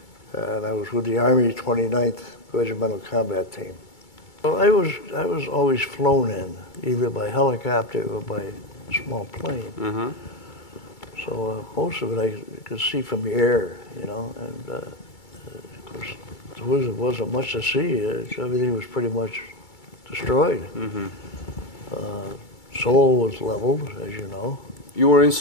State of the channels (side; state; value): right; late; 2.3 ms